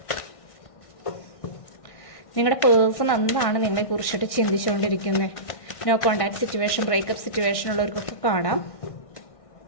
നിങ്ങളുടെ പേഴ്സൺ എന്താണ് നിങ്ങളെ കുറിച്ചിട്ട് ചിന്തിച്ചുകൊണ്ടിരിക്കുന്നത്. No contact situation, breakup situation ഉള്ളവർക്കൊക്കെ കാണാം.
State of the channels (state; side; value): late; right; 1.6 ms